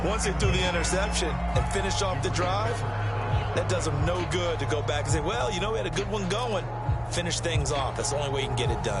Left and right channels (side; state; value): both; identical; correlation 1.00